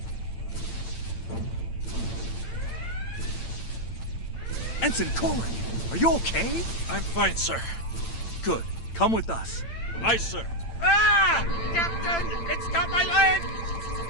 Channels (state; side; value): late; right; 8.9 ms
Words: Ensign Korik, are you okay? I'm fine, sir. Good. Come with us. Aye, sir. Ah! Captain! It's got my leg!